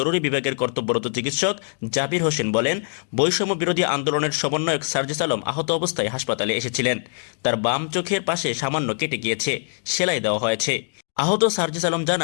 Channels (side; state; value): right; silent; digital silence